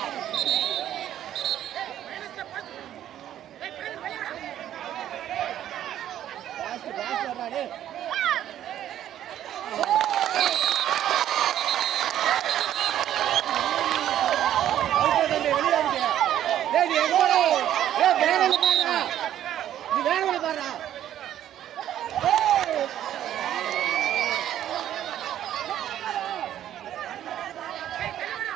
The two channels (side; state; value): left; quieter; 11.5 dB